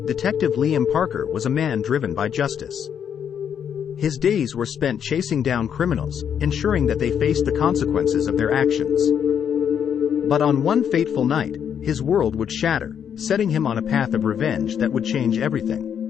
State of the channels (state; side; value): quieter; right; 8.3 dB